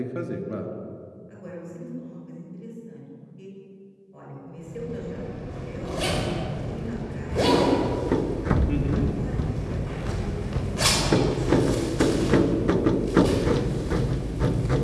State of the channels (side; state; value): both; identical; correlation 1.00